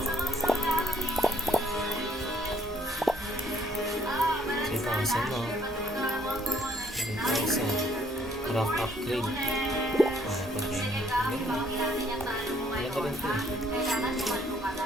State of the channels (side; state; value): both; normal; correlation 0.64